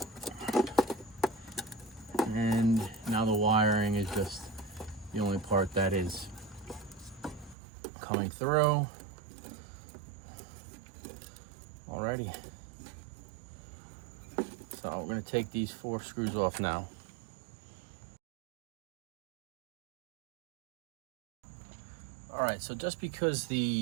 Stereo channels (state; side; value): drops out; left; at 7.6 s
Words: And now the wiring is just the only part that is coming through. Alrighty. So we're going to take these 4 screws off now. Alright, so just because